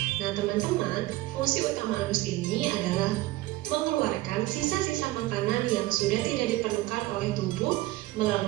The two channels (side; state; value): left; quieter; 17.9 dB